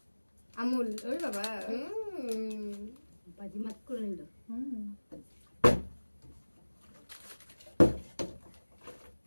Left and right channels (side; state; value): both; inverted; correlation -1.00